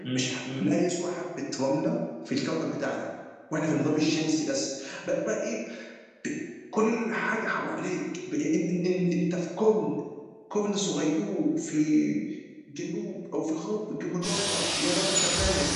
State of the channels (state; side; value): identical; both; correlation 1.00